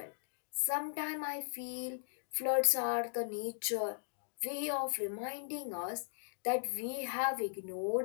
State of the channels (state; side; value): silent; right; digital silence